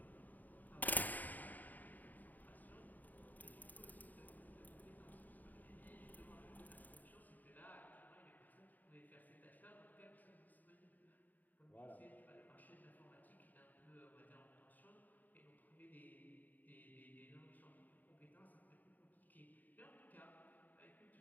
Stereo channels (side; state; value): right; late; 0.084 ms